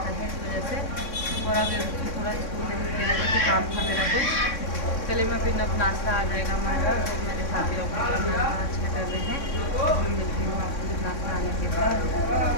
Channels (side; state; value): right; late; 3.6 ms